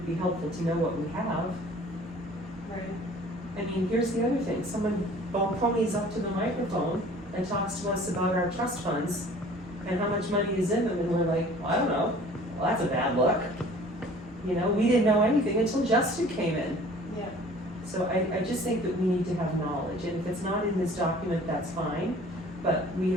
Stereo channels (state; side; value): normal; both; correlation 0.49